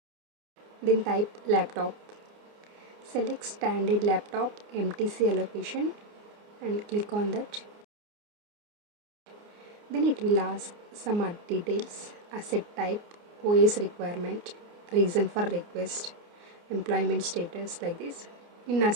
Then type laptop. Select standard laptop MTC allocation and click on that. Then it will ask some other details, asset type, OS requirement, reason for request, employment status like this. In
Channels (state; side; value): late; left; 29 ms